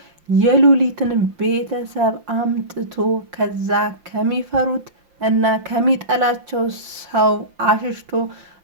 የሉሊትን ቤተሰብ አምጥቶ ከዛ ከሚፈሩት እና ከሚጠላቸው ሰው አሽሽቶ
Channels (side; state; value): left; late; 5.8 ms